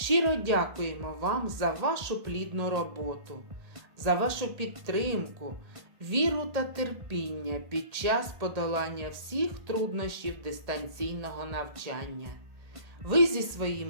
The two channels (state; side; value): late; left; 1.8 ms